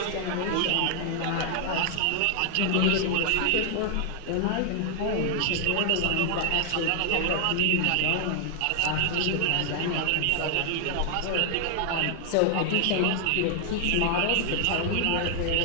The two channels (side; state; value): both; different; correlation 0.00